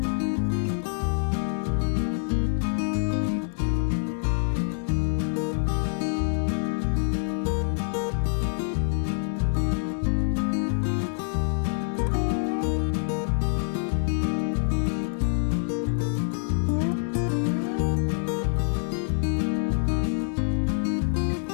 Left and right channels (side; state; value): right; silent; 61 dB below the other